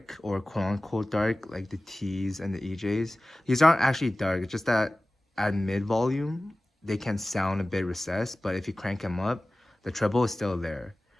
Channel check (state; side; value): normal; both; correlation 0.97